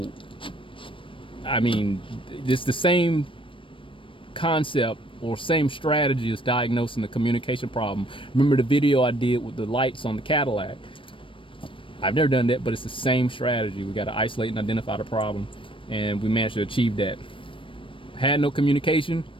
I mean, it's the same concept or same strategy as diagnosing the communication problem. Remember the video I did with the lights on the Cadillac? I've never done that, but it's the same strategy. We got to isolate and identify the problem, and we managed to achieve that. Had no communication,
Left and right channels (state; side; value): late; right; 0.25 ms